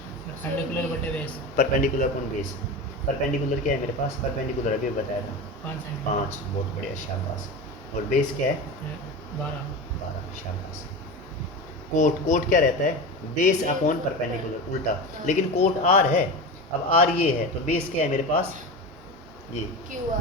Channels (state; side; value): normal; both; correlation 0.25